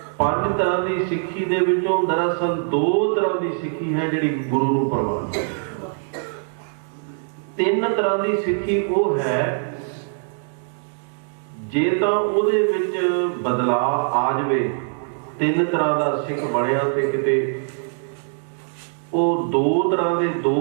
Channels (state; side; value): silent; left; digital silence